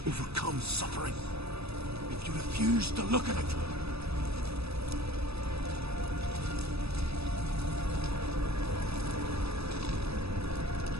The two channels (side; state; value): left; late; 0.78 ms